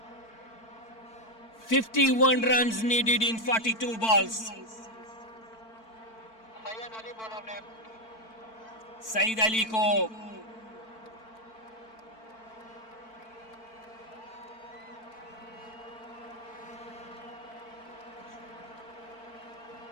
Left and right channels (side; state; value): right; late; 4.5 ms